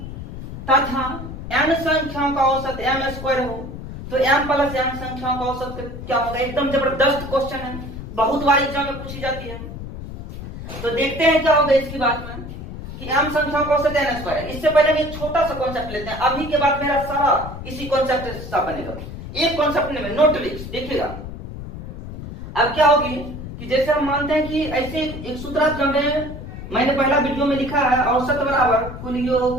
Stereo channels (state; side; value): noise; left; rumble, 10 dB below the sound